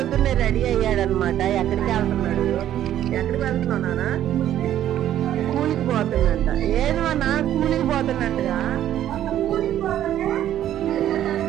రెడీ అయ్యాడనమాట. ఎక్కడికి వెళ్తున్నాడు? ఎక్కడికి వెళ్తున్నావు నాన్న? కూలికి పోతున్నట్ట. ఏది నాన్న కూలికి పోతున్నట్టుగా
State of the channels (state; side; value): quieter; left; 11.7 dB